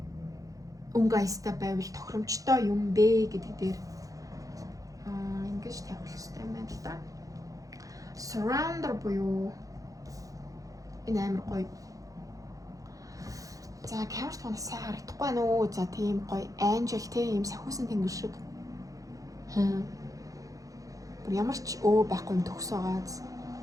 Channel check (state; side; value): late; left; 0.17 ms